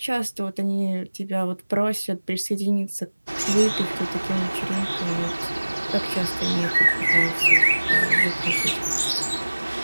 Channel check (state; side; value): inverted; both; correlation -1.00